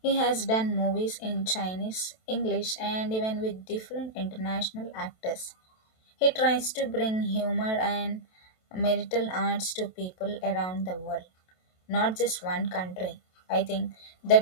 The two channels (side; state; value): right; late; 27 ms